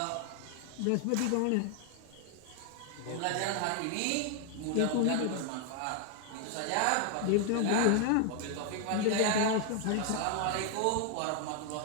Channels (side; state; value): both; different; correlation 0.00